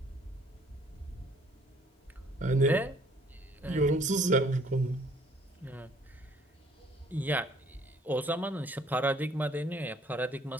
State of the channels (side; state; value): both; normal; correlation 0.60